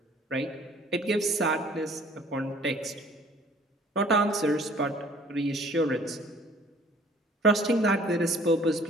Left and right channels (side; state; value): both; normal; correlation 0.54